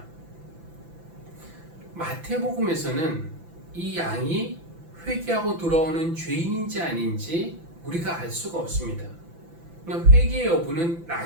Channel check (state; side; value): late; left; 5.9 ms